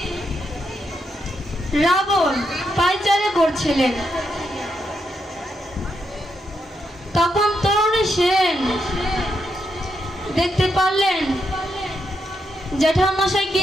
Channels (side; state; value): both; normal; correlation 0.81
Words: রাবণ পায়চারি করছিলেন। তখন তরুণী সেন দেখতে পারলেন জ্যাঠামশাই কি